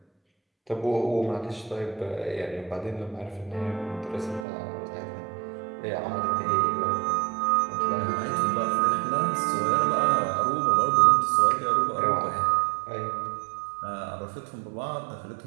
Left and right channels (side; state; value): left; drops out; at 4.5 s